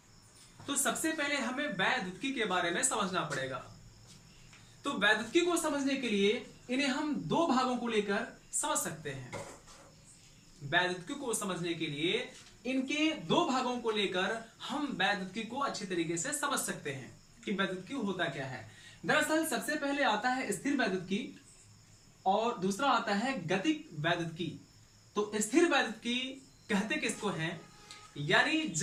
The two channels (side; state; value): both; identical; correlation 1.00